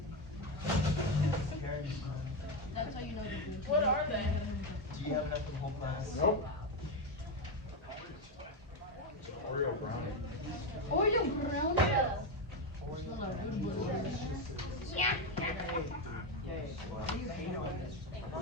That's how you know the What are they? Do you have enough for the whole class? Nope. Oreo brownie. Oreo brownie. Smell like good butter. Yeah. Why do you hate on this? I'm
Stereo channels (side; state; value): both; normal; correlation 0.10